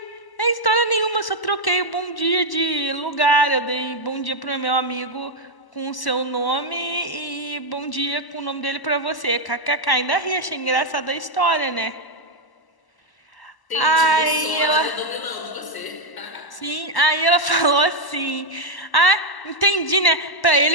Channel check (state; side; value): late; right; 1.0 ms